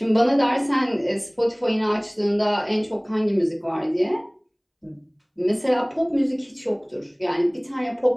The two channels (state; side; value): identical; both; correlation 1.00